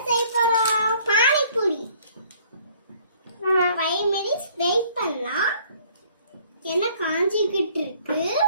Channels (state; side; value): inverted; both; correlation -0.58